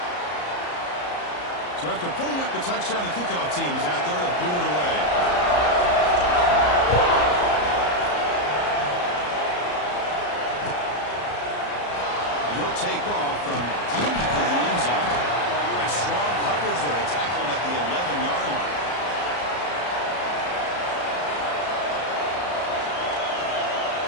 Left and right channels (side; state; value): right; late; 34 ms